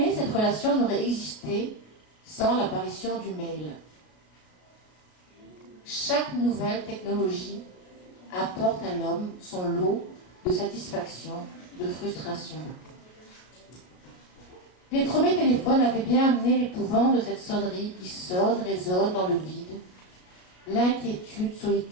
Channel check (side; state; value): right; late; 33 ms